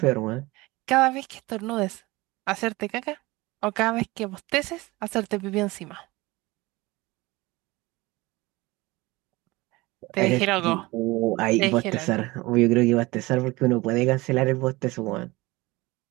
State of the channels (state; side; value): quieter; left; 21.5 dB